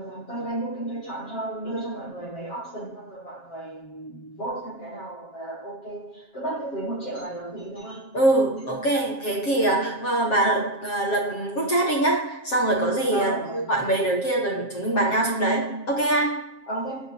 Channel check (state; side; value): late; right; 7.4 ms